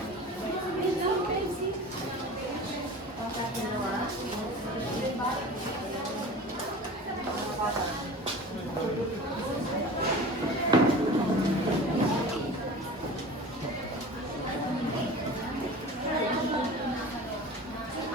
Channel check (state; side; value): normal; both; correlation 0.37